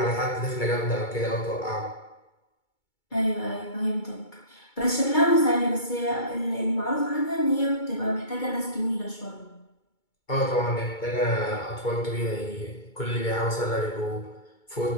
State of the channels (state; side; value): late; right; 2.2 ms